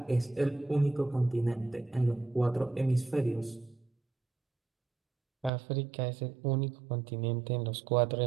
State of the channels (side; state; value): left; drops out; at 5.5 s